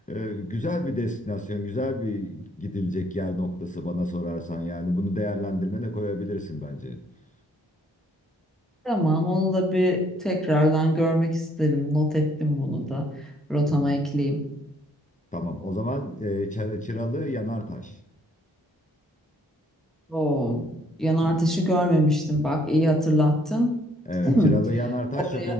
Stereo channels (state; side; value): normal; both; correlation 0.66